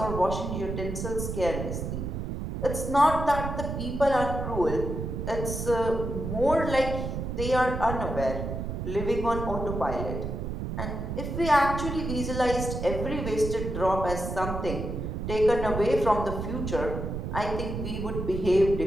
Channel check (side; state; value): right; noise; rumble, 4 dB below the sound